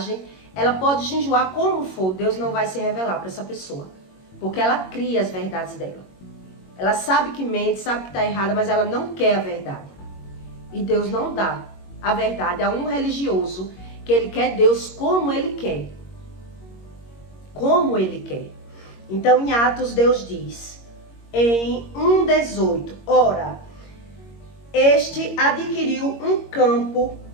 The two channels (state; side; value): late; right; 21 ms